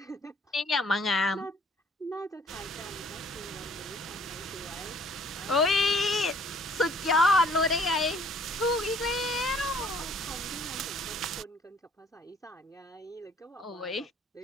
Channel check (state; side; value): normal; both; correlation 0.58